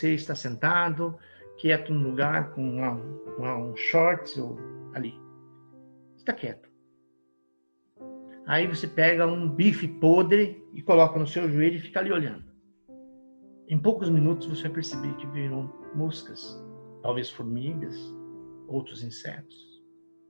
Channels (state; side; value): inverted; both; correlation -1.00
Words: está sentado, quieto num lugar com um shorts ou ali. Está quieto. Aí você pega um bife podre e coloca no seu joelho e fica ali olhando. Em poucos minutos você vai perceber que viram moscas, talvez formigas, outros insetos.